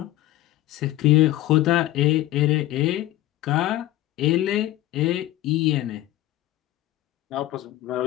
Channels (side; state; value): right; quieter; 15.3 dB